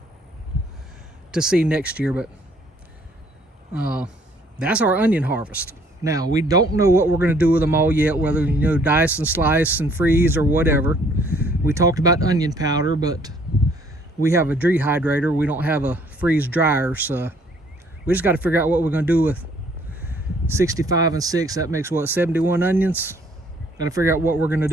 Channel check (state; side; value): normal; both; correlation 0.62